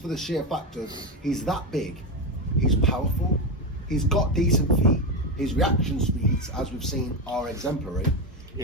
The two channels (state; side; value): normal; both; correlation 0.13